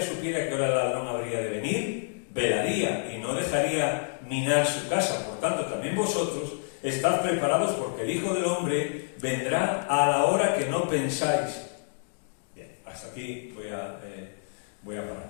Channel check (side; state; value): right; silent; digital silence